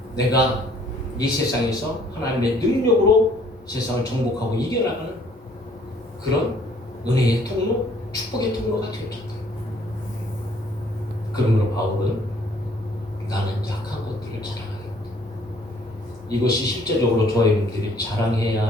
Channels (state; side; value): normal; both; correlation 0.60